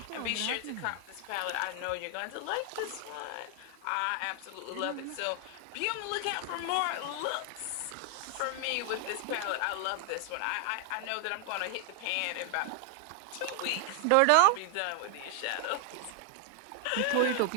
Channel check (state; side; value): different; both; correlation 0.00